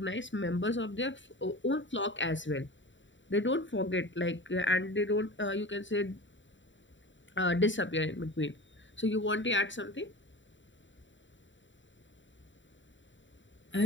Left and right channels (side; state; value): right; late; 0.54 ms